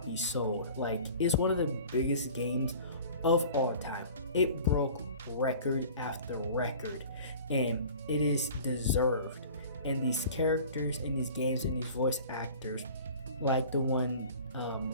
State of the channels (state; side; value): inverted; both; correlation -0.43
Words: sold. Like, it's one of the biggest games of all time. It broke record after record, and it is deserved. And these characters in these games and these voice actors, like the one